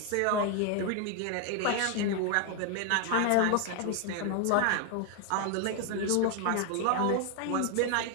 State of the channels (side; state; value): both; different; correlation 0.01